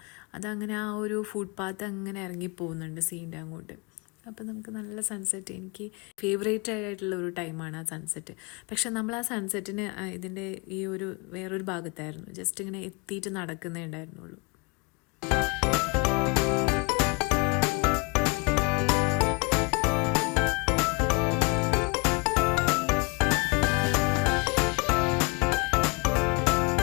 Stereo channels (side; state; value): right; quieter; 29.8 dB